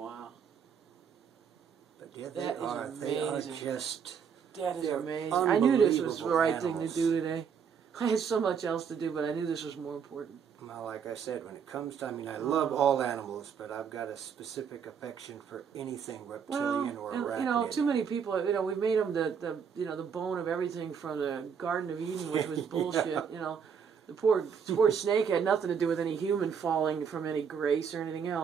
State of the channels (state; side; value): quieter; left; 7.0 dB